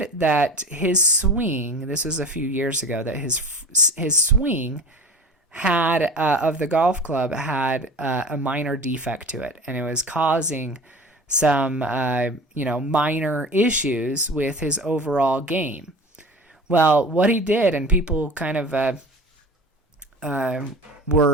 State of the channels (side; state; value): both; normal; correlation 0.37